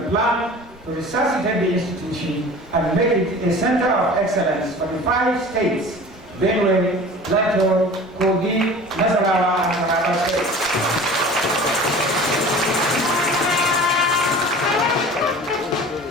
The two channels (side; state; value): both; normal; correlation 0.41